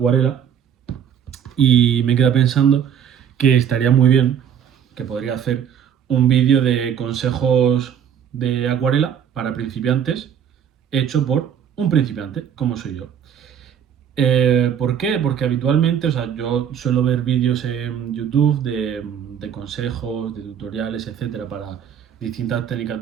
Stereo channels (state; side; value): quieter; left; 8.6 dB